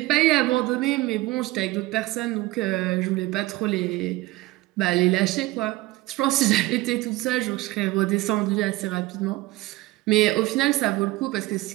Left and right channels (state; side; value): quieter; left; 19.1 dB